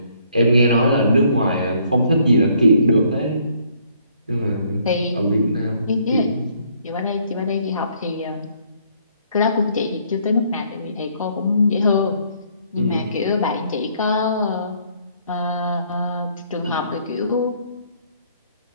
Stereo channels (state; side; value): inverted; both; correlation -0.65